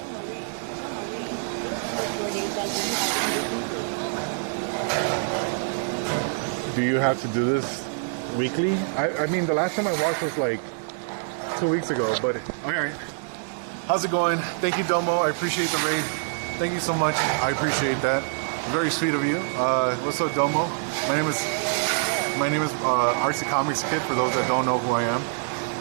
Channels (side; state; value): left; silent; 61 dB below the other